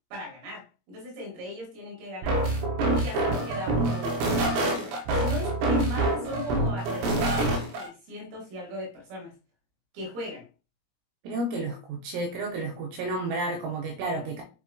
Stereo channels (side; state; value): left; late; 17 ms